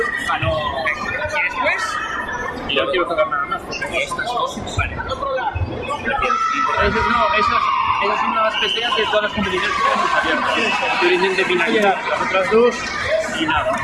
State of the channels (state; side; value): identical; both; correlation 1.00